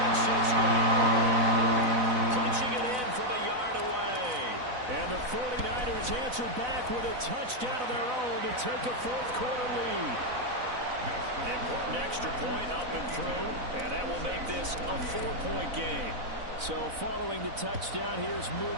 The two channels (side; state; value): left; late; 4.0 ms